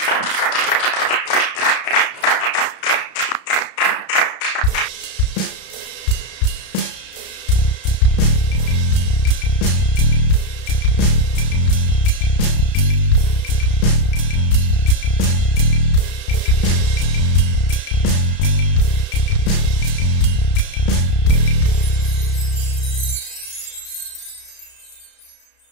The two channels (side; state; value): right; late; 33 ms